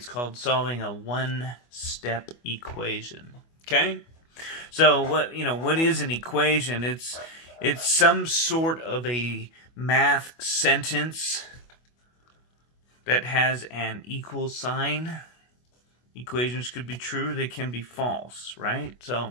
called solving a one-step equation. Okay, so what is an equation? It's some sort of a math sentence that has an equal sign. Equations could be true, they can be false, right?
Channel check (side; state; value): right; late; 25 ms